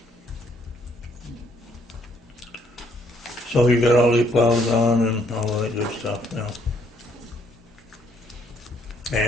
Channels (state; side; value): normal; both; correlation 0.68